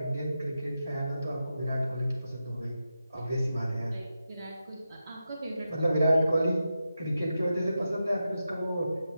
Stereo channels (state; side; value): inverted; both; correlation -0.90